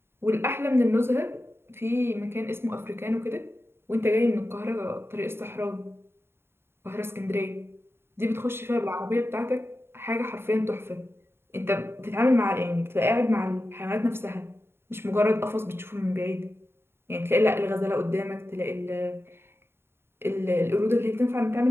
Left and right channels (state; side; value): late; left; 0.11 ms